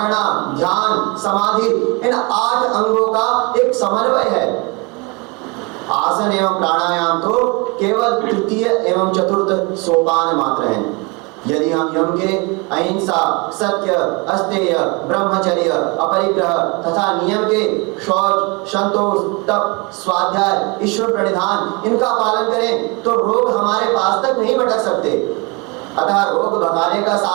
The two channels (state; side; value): quieter; left; 28.9 dB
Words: ध्यान, समाधि, इन 8 अंगों का एक समन्वय है। आसन एवं प्राणायाम तो केवल तृतीय एवं चतुर्थ सोपान मात्र हैं। यदि हम यम के अहिंसा, सत्य, अस्तेय, ब्रह्मचर्य, अपरिग्रह तथा नियम के शौच, संतोष, तप, स्वाध्याय, ईश्वर प्रणिधान, इनका पालन करें तो रोग हमारे पास तक नहीं भटक सकते। अतः रोग भगाने का